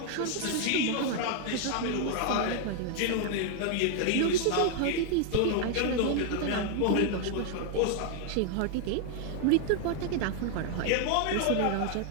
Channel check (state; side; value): different; both; correlation 0.00